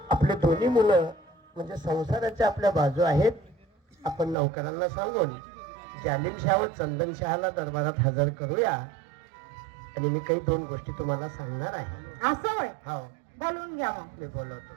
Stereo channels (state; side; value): drops out; left; at 4.4 s